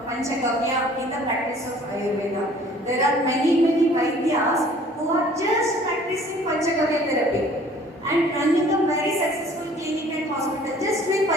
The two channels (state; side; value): normal; both; correlation 0.53